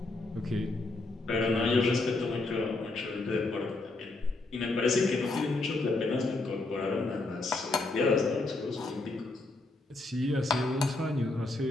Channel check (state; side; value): quieter; right; 3.1 dB